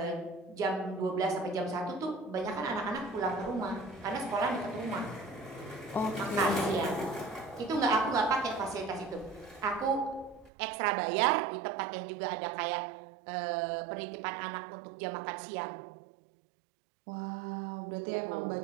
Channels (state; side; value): drops out; left; at 10.5 s